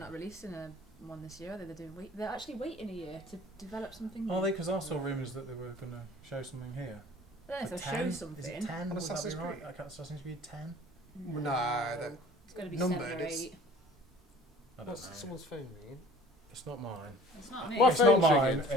releasing one this year. They're actually waiting a year to develop something. Are new. they? Because I saw rumours that they were going to show something here. I don't know if For they'll 10? show Is something. it 10? On Would Assassin's that be right? Creed? Like Assassin's Creed 10? No, that- It's going to be numbered, 7 or it's- 8. I don't know. Someone's phone ringing. It's not mine. It's not me. What It's not phone's mine.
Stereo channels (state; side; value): normal; both; correlation 0.48